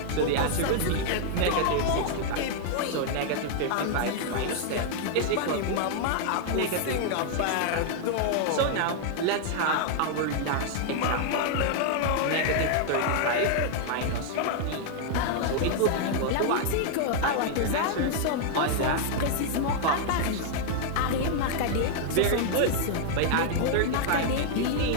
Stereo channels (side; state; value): both; different; correlation 0.00